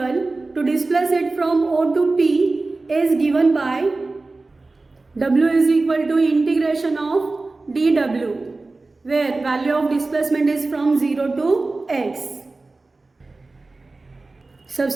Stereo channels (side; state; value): left; quieter; 3.4 dB